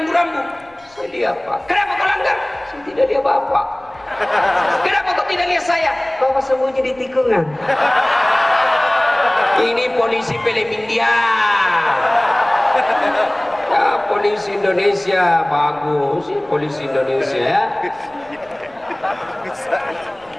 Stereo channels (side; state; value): left; noise; rumble, 30 dB below the sound